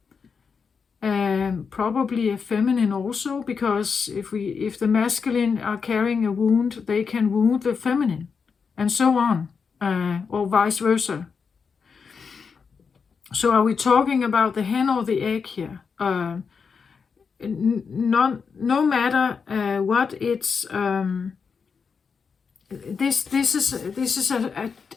probably a feminine also, because if the masculine are carrying a wound, they can wound the feminine, and so on, or vice versa. So are we talking about the hen or the egg here? No matter what it's this is a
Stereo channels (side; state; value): right; quieter; 5.7 dB